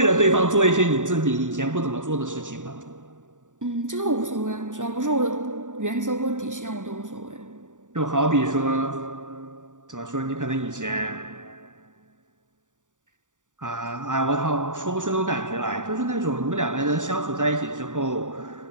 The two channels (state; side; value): late; left; 0.87 ms